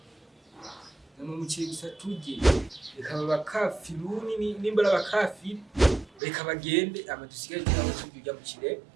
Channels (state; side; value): drops out; left; at 6.2 s